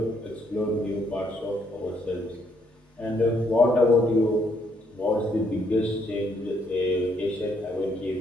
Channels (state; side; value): normal; both; correlation 0.71